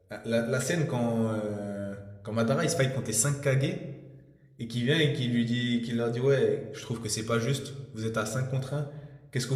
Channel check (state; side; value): identical; both; correlation 1.00